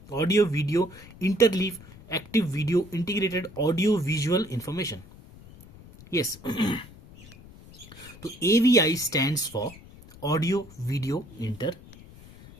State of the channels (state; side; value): noise; left; rumble, 20 dB below the sound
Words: audio video interleave, active video integrated audio visual information. Yes, तो AVI stands for audio video